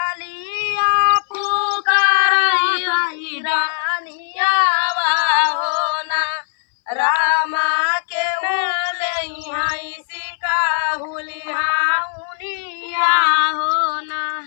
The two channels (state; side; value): silent; right; 61 dB below the other